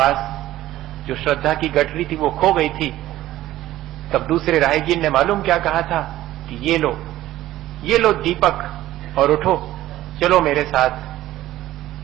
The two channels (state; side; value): quieter; left; 14.8 dB